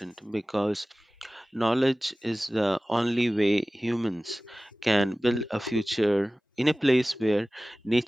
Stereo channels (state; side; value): normal; both; correlation 0.98